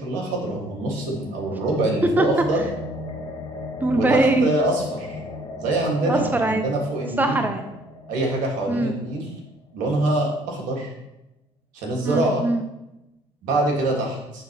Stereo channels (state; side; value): normal; both; correlation 0.60